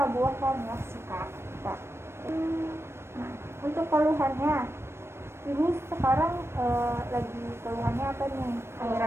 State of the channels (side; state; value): left; late; 0.12 ms